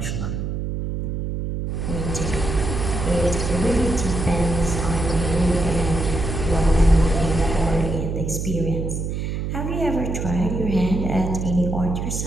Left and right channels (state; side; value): noise; right; hum, 3 dB below the sound